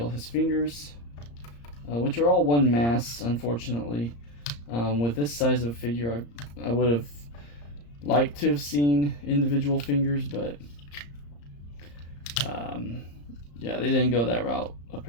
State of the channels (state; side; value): late; right; 34 ms